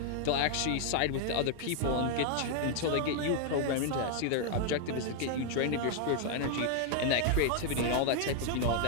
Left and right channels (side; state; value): both; different; correlation 0.00